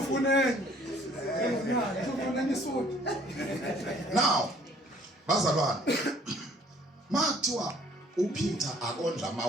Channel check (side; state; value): both; normal; correlation 0.58